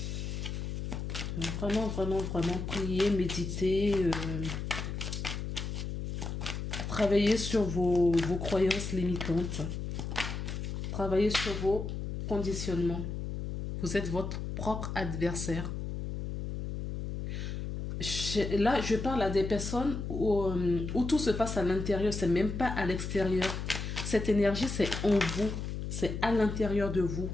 Vraiment prier, méditer, travailler sur vos croyances limitantes. Travailler sur vos conditionnements. Vous êtes votre propre adversaire. Là, je parle à des personnes où tout se passe à l'intérieur, c'est même pas à l'extérieur. Cette énergie, c'est en vous, c'est à l'intérieur de vous.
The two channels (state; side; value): noise; left; hum, 4 dB below the sound